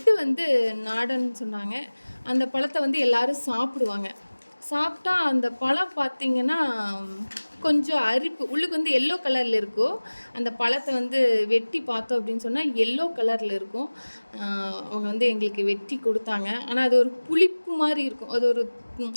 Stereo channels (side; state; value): both; inverted; correlation -1.00